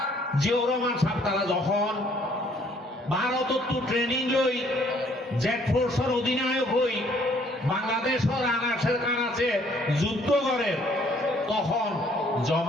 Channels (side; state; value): both; normal; correlation 0.62